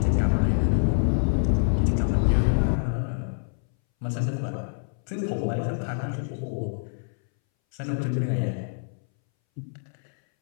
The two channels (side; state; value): right; silent; 61 dB below the other